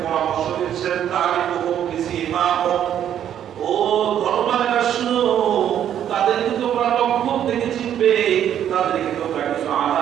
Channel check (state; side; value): quieter; left; 10.1 dB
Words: পরামর্শ দিচ্ছেন, তারিকুহুম বিসিমাহুম, ও ধর্মালেরা শুনো, তাদেরকে তোমরা লক্ষণ থেকে চিনবে, তাদেরকে তোমরা কিছু